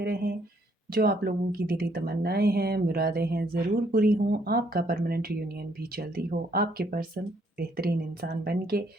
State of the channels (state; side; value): normal; both; correlation 0.68